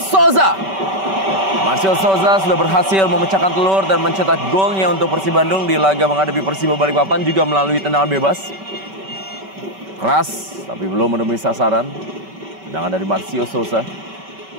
Marcio Souza sudah berhasil memecahkan telur dan mencetak golnya untuk Persib Bandung di laga menghadapi Persiba Balikpapan juga melalui tendangan bebas. Keras tapi belum menemui sasaran. Tendangan dari Marcio Souza.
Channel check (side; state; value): left; late; 5.2 ms